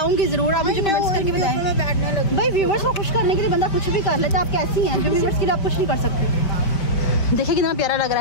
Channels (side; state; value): right; late; 5.3 ms